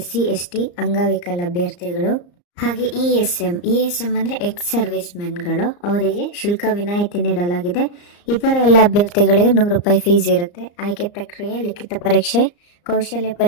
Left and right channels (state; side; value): late; right; 34 ms